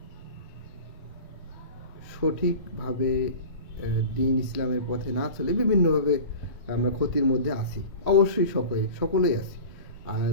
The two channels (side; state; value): both; inverted; correlation -0.36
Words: সঠিকভাবে দ্বীন ইসলামের পথে না চলে বিভিন্নভাবে আমরা ক্ষতির মধ্যে আছি। অবশ্যই সকলেই আছি। আর